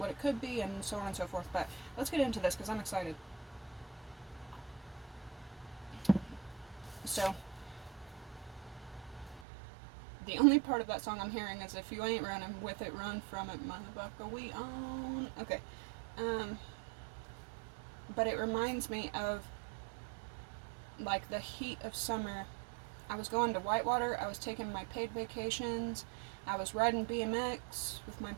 it could be and so on and so forth. But let's get into this because I'm excited. So the only part of that song I'm hearing is if you ain't running with it, run from it, motherfucker, we own. Okay. But it reminds me of like the heat of summer. I was going to Whitewater, I was taking my paid vacations, I was riding BMX with my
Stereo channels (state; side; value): drops out; left; at 9.5 s